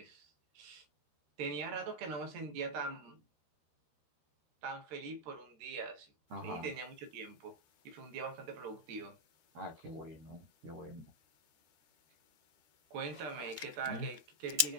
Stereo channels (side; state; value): left; late; 13 ms